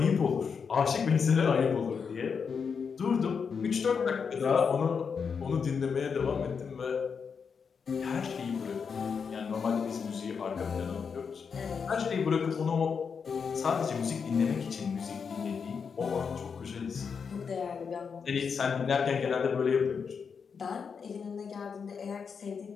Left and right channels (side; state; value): right; quieter; 6.1 dB